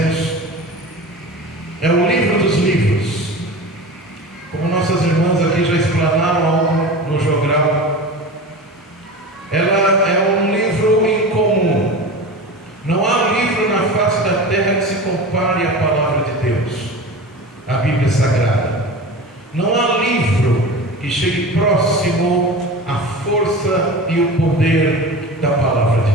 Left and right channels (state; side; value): normal; both; correlation 0.32